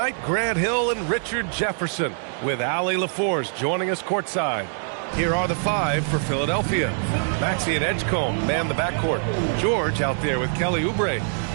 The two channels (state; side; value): silent; left; digital silence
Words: Grant Hill and Richard Jefferson, with Allie LaForce joining us courtside. Here are the 5 for Philadelphia. Maxey and Edgecombe man the backcourt. George out there with Kelly Oubre.